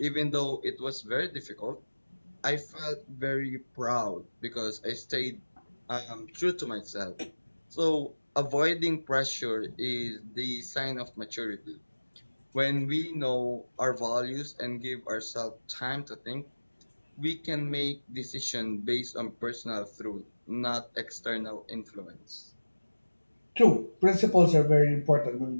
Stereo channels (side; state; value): both; inverted; correlation -1.00